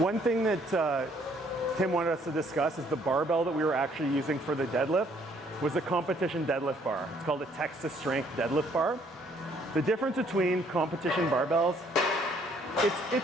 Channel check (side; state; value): both; normal; correlation 0.64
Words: thing that Tim wanted us to discuss is the barbell that we were actually using for the deadlift was a competition deadlift bar. It's called a Texas Strength deadlift bar. The difference between competition barbells,